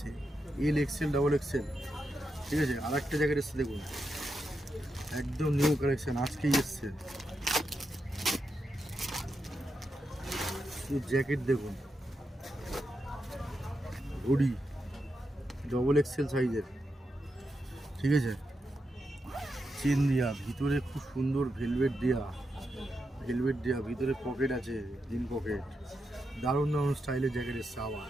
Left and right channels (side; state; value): both; normal; correlation 0.86